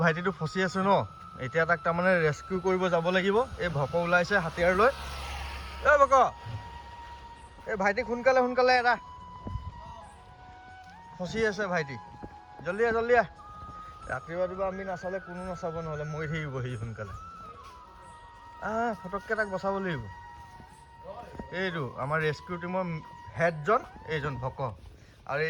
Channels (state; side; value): identical; both; correlation 1.00